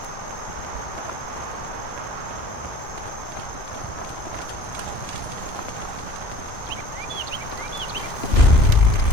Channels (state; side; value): late; right; 2.9 ms